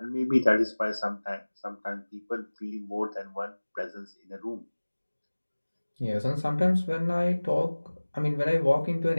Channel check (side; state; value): both; inverted; correlation -1.00